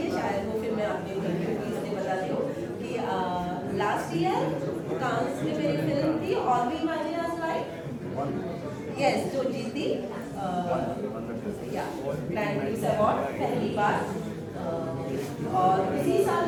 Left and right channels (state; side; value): identical; both; correlation 1.00